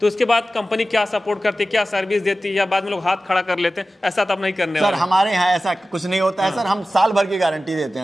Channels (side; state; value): both; normal; correlation 0.95